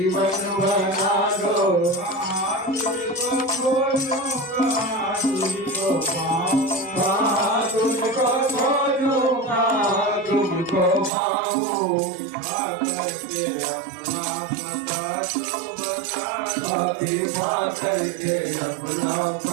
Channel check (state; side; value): drops out; left; at 11.1 s